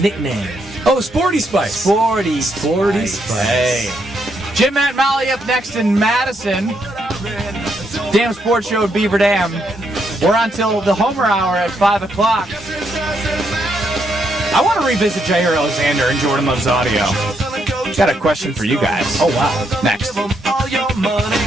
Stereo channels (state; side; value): normal; both; correlation 0.77